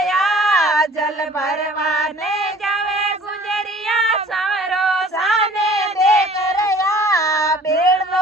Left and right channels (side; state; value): both; normal; correlation 0.50